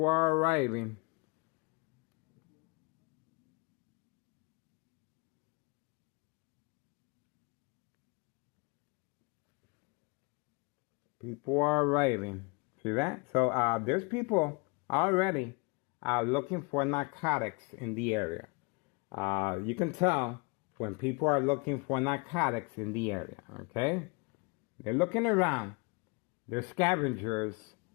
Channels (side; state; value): right; quieter; 30.4 dB